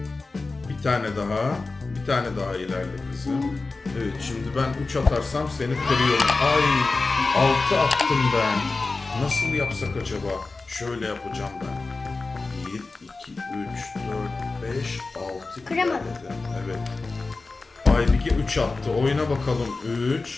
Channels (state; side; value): quieter; right; 3.7 dB